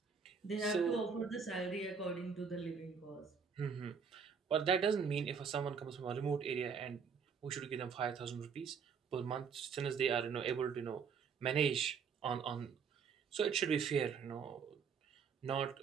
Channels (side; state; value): left; quieter; 6.2 dB